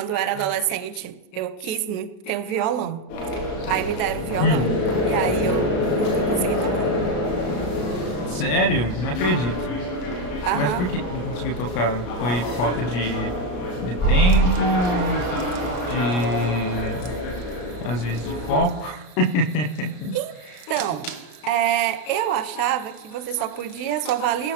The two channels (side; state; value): right; late; 33 ms